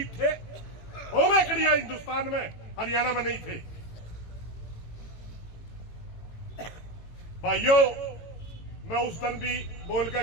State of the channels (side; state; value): right; late; 18 ms